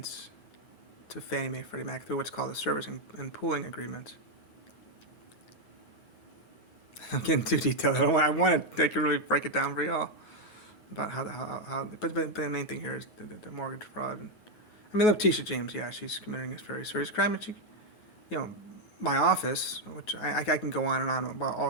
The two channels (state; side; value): late; right; 9.4 ms